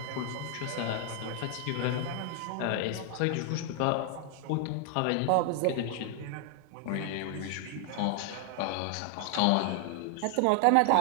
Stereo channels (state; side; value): different; both; correlation 0.00